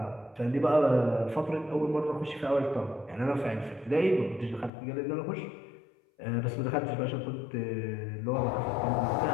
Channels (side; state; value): right; drops out; at 4.7 s